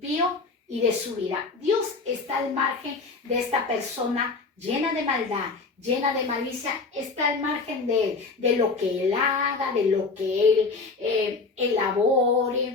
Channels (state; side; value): quieter; right; 4.1 dB